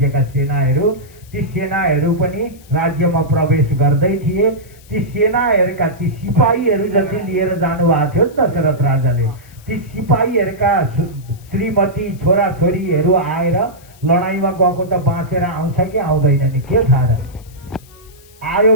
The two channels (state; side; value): noise; left; hiss, 26 dB below the sound